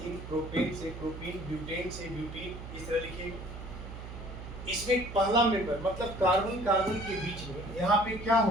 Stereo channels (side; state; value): right; noise; hum, 11 dB below the sound